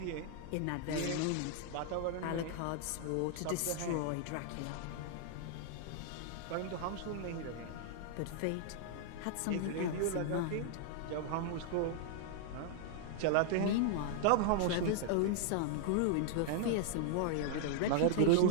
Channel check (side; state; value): both; different; correlation 0.00